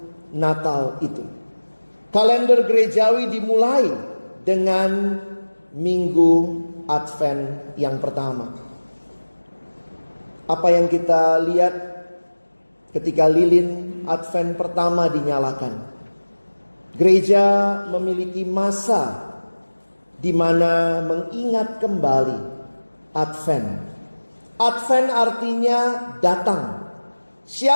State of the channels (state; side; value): inverted; both; correlation -1.00